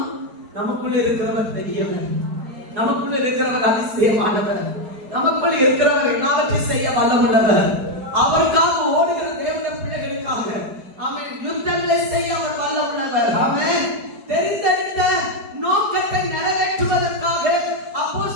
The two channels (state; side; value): late; left; 4.7 ms